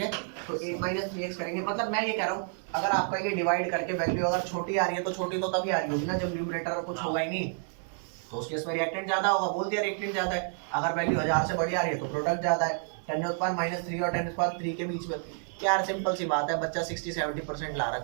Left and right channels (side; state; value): left; silent; 58 dB below the other